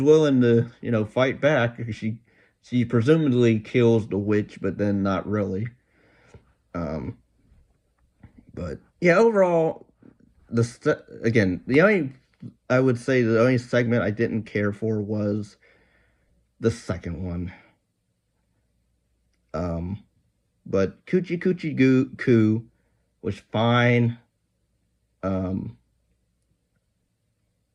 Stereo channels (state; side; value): identical; both; correlation 1.00